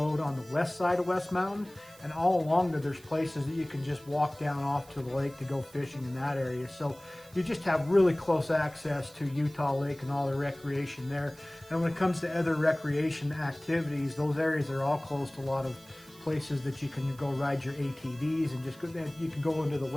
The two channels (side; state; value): right; noise; hiss, 23 dB below the sound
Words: on the west side of West Mountain, and all along there's places that you can just walk down off to the lake to go fishing in that area. So you just have really close access to Utah Lake and all the recreation there. And when it comes to other recreation activities, those areas are all close to a lot of places that you can go ride your ATVs, and just go, you can go into the